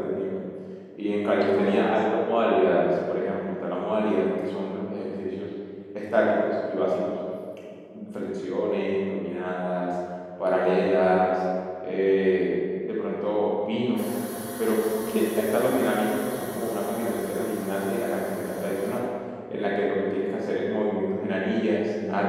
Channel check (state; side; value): identical; both; correlation 1.00